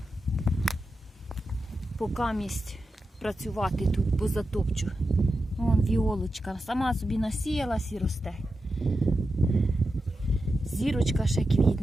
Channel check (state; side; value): normal; both; correlation 0.90